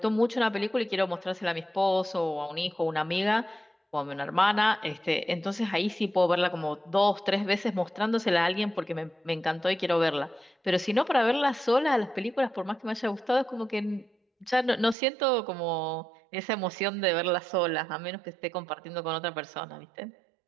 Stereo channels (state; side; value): drops out; left; at 15.0 s